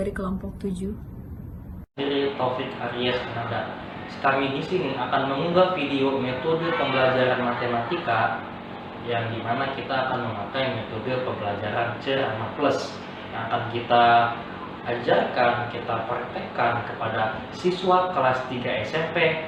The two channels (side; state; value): both; identical; correlation 1.00